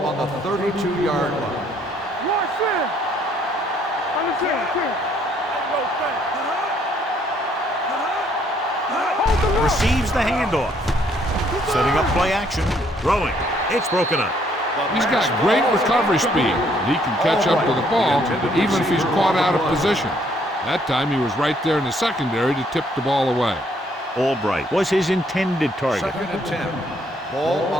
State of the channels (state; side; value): normal; both; correlation 0.67